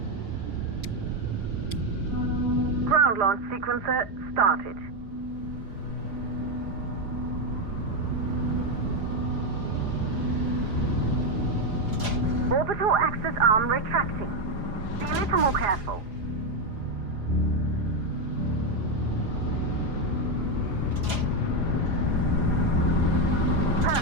Ground launch sequencer started. Orbital axis arm retracting. Be a little more careful.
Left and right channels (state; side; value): late; left; 4.9 ms